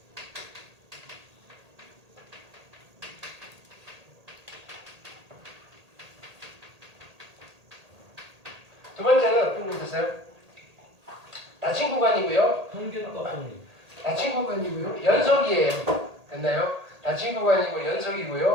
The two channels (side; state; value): left; late; 1.8 ms